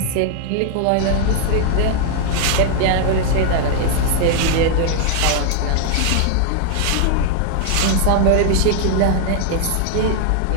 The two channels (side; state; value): both; different; correlation 0.00